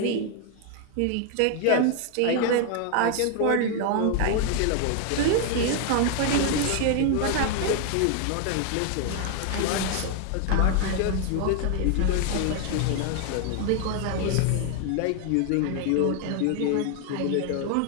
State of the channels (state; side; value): different; both; correlation 0.00